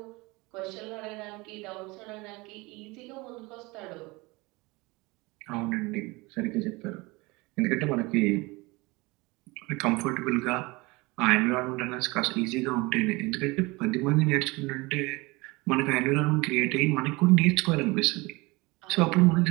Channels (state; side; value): quieter; left; 24.1 dB